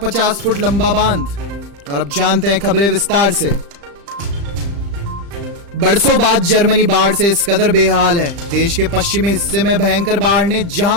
फुट लंबा बांध। और अब जानते हैं खबरें विस्तार से। बरसों बाद जर्मनी बाढ़ से इस कदर बेहाल है। देश के पश्चिमी हिस्से में भयंकर बाढ़ ने जहां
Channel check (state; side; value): late; left; 35 ms